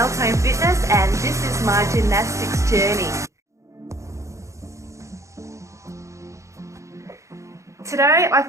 Fitness and this is my gymnastics journey. Today I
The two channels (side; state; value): left; late; 0.15 ms